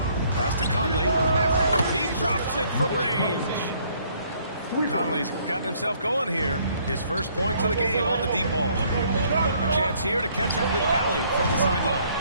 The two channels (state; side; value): inverted; both; correlation -0.64